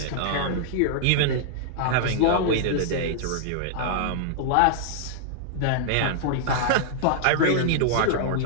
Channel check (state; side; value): different; both; correlation -0.01